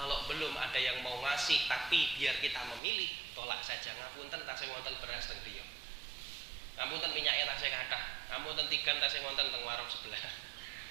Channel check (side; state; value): left; drops out; at 2.8 s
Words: belum ada yang mau ngasih tapi biar kita memilih, tolak saja. Ngapunten tasih wonten beras teng griya. Ngapunten minyaknya tasih kathah. Ngapunten tigan tasih wonten teng warung sebelah.